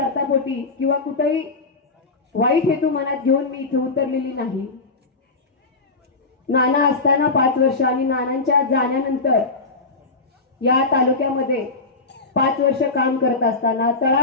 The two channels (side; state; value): right; quieter; 3.7 dB